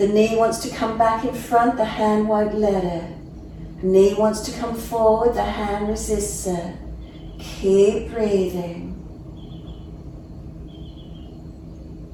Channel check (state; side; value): identical; both; correlation 1.00